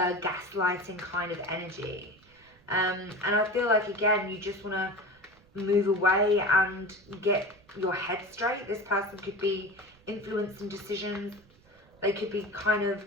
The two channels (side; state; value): right; noise; rumble, 29 dB below the sound